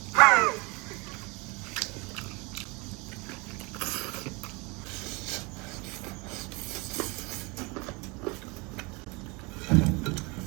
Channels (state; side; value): quieter; left; 27.5 dB